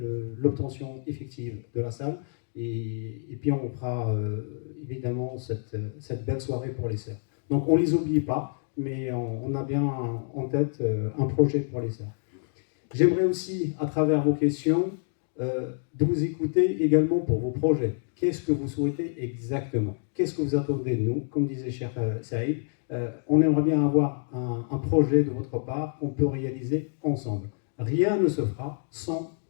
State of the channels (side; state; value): right; silent; 60 dB below the other